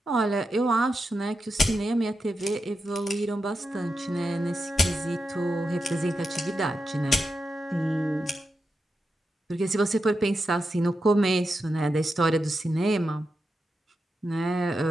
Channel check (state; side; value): normal; both; correlation 0.88